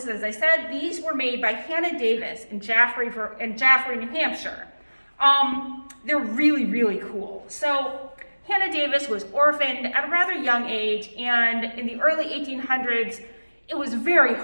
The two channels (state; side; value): inverted; both; correlation -1.00